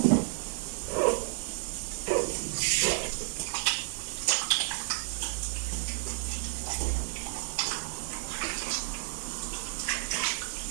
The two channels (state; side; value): silent; left; digital silence